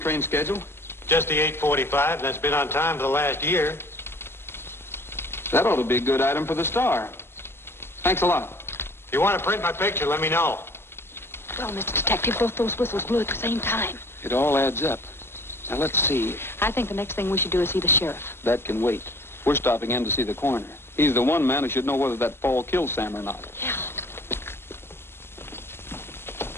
schedule? Just the 8:45, and that's been on time for the last year. That ought to be a good item for the Star. Thanks a lot. If you want to print my picture, let me know. Well, Mr. Detective, both those whistles blew at the same time. It all adds up. Now, let's see. I think the next thing we should do is see the sheriff. That can wait. We're stopping in to see the coroner. He's the one man who should know whether that fall killed Sam or not. Yeah.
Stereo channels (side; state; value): right; late; 0.12 ms